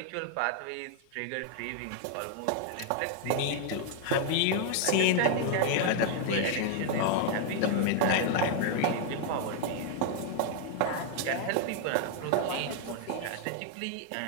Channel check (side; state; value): both; different; correlation 0.00